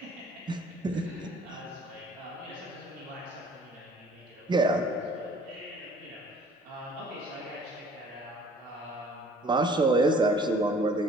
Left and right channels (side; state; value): both; normal; correlation 0.53